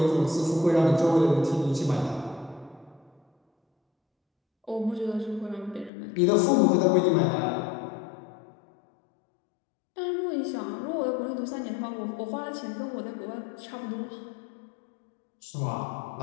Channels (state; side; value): drops out; right; at 5.9 s